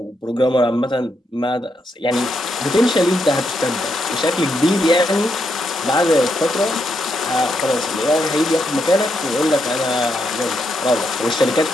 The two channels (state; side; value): normal; both; correlation 0.80